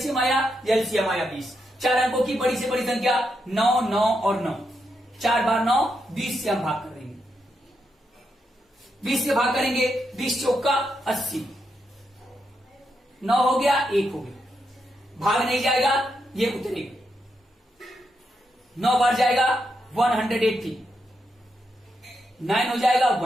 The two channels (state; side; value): normal; both; correlation 0.82